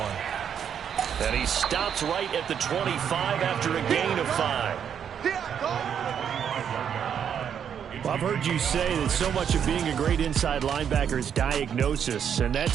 And he stops right at the 25 after a gain of 5. Well, I've heard you say that so much of being a great inside linebacker is diagnosis. And that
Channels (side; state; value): left; quieter; 8.2 dB